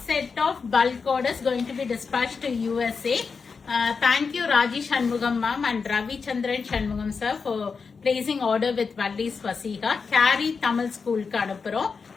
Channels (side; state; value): right; quieter; 5.2 dB